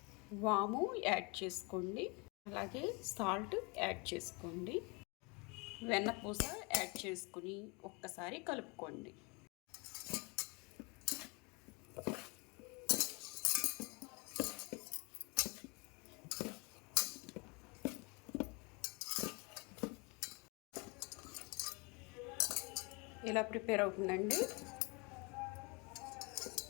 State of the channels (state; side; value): quieter; right; 29.9 dB